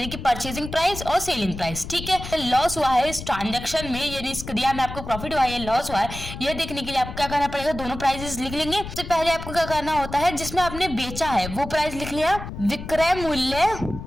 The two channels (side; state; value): left; noise; rumble, 10 dB below the sound